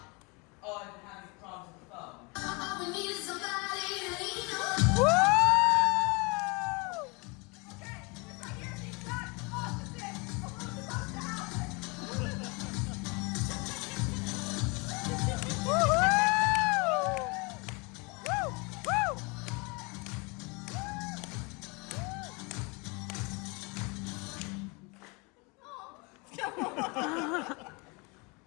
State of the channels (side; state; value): right; quieter; 29.2 dB